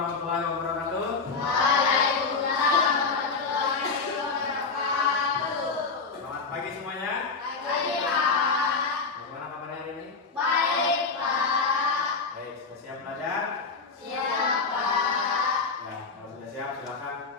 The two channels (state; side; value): quieter; right; 4.6 dB